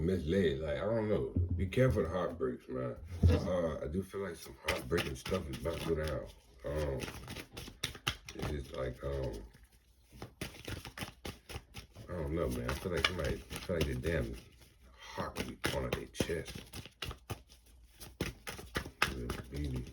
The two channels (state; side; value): identical; both; correlation 1.00